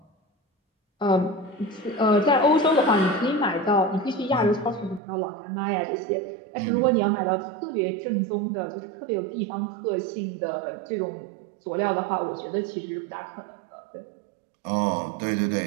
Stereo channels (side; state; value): left; drops out; at 5.0 s